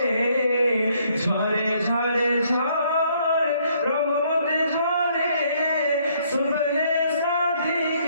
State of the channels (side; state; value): both; inverted; correlation -0.67